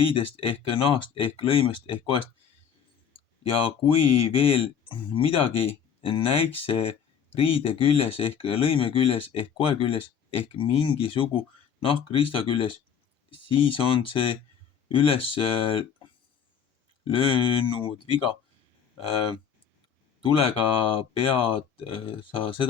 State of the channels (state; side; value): quieter; right; 7.6 dB